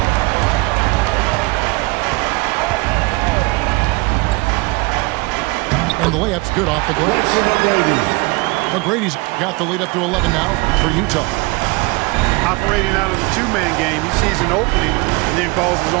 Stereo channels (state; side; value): quieter; left; 25.5 dB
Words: And the layup's good off the glass. McGrady's got the lead up to 11 now for Utah. Operating out of the two-man game, he sees an opening and then calls his